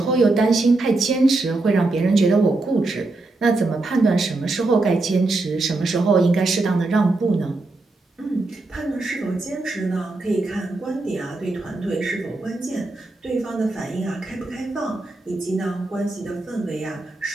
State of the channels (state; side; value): quieter; left; 3.1 dB